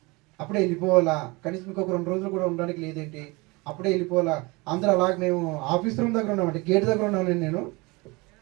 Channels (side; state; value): left; quieter; 25.4 dB